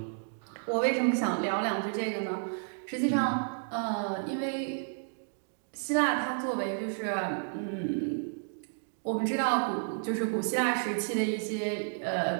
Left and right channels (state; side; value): silent; left; digital silence